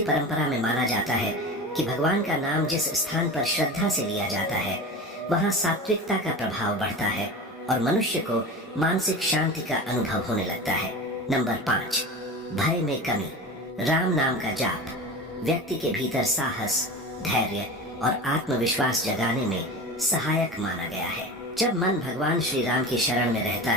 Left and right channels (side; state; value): both; normal; correlation 0.30